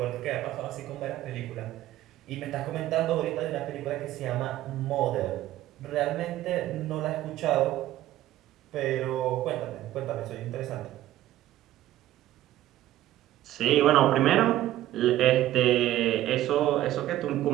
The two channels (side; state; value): left; quieter; 14.1 dB